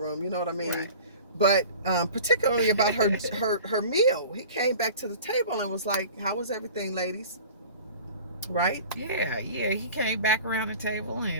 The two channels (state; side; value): inverted; both; correlation -0.41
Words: You know what I mean? Right. But particularly about her meal, he came back to the table and was like, "How was everything, ladies?" Right? Yeah. He came back around the table